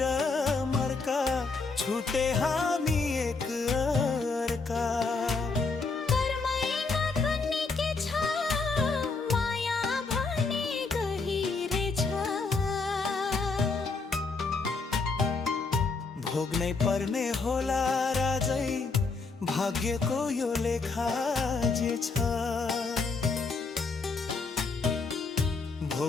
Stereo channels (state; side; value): quieter; right; 4.2 dB